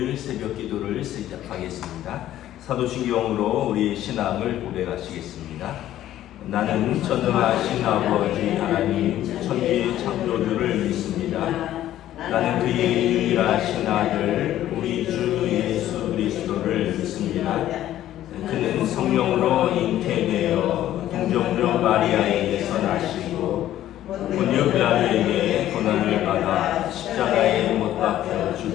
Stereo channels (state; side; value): quieter; right; 12.9 dB